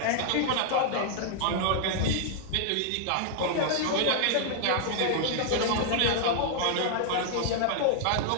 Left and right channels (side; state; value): both; different; correlation 0.00